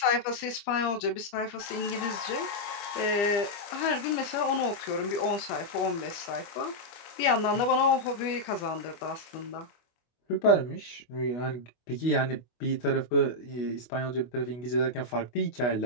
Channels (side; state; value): right; late; 25 ms